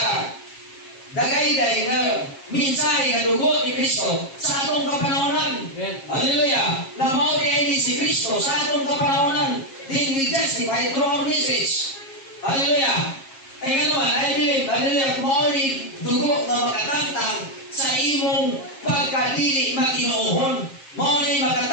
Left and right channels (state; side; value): late; right; 7.4 ms